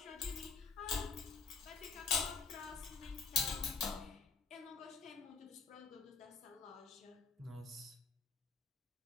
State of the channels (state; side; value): quieter; right; 5.2 dB